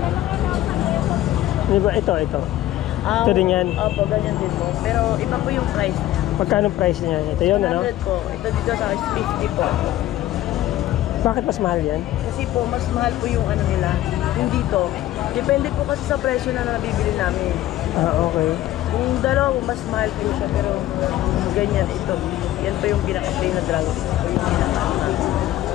Di ba? Ito. Ito din yan. Opo, ganyan din po. Pero iba po yung price niya. Magkano price niya? Ito yun, ano? 100 po. Ito dito sa 50 po. Bakit mas mahal yan? Kasi po, mas mahal po yung ano nila. Yung dito. Depende po kasi sa presyo na nabibili namin. Okay. Yung dalawa, mas mahal po siya. Pero ganyan, ito. Yan po yung pinaka-plain na dragon. Ito po yung pinaka-plain.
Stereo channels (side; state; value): right; quieter; 14.3 dB